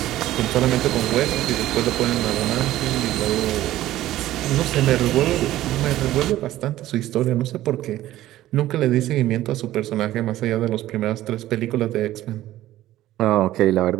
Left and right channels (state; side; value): quieter; left; 14.6 dB